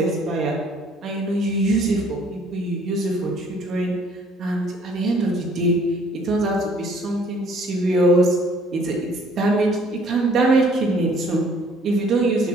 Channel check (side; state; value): both; normal; correlation 0.59